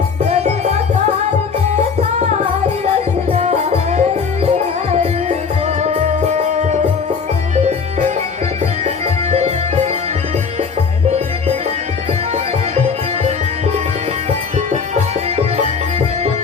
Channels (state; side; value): quieter; right; 5.6 dB